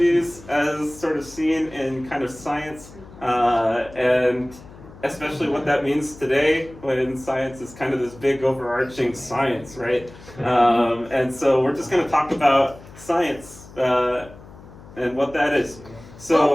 as sort of seen in kind of science, and especially what that means today when science is kind of this big overarching science, right? And so we're just going to talk about science and what that is.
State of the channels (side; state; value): left; noise; hum, 19 dB below the sound